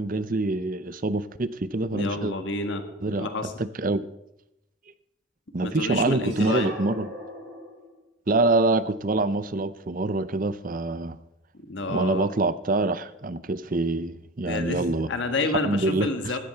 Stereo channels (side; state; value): both; normal; correlation 0.32